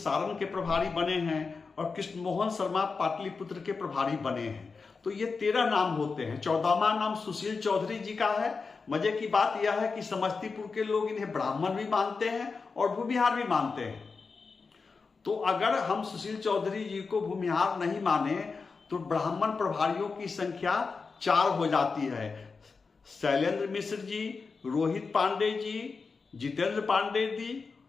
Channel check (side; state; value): right; quieter; 4.7 dB